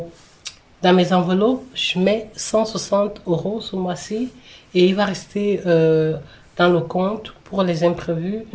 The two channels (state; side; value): identical; both; correlation 1.00